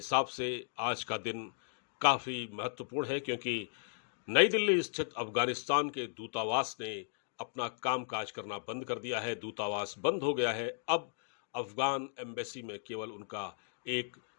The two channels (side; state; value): right; silent; digital silence